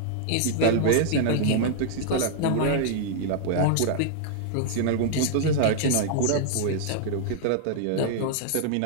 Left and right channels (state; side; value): different; both; correlation 0.00